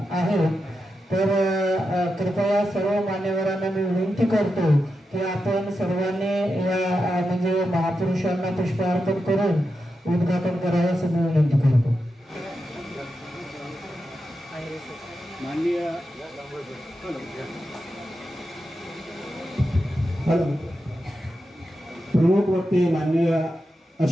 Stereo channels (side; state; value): both; normal; correlation 0.88